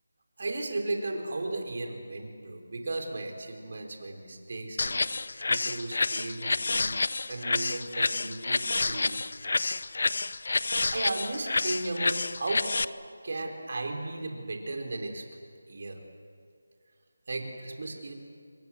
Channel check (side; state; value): both; inverted; correlation -0.95